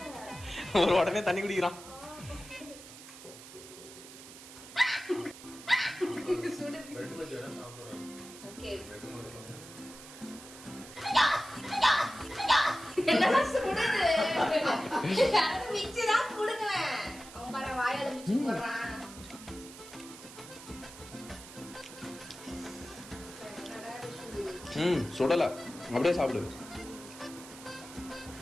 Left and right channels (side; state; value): right; noise; hiss, 16 dB below the sound